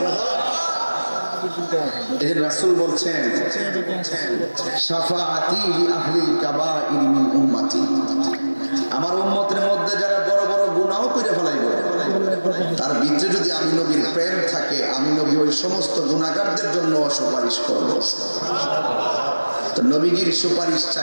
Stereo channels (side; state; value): both; inverted; correlation -1.00